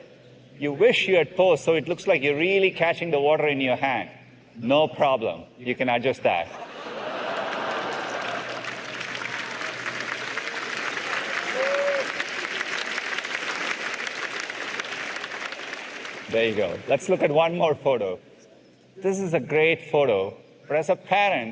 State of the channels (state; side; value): identical; both; correlation 1.00